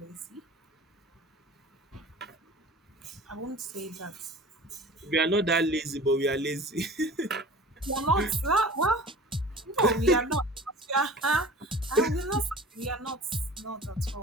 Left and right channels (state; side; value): normal; both; correlation 0.41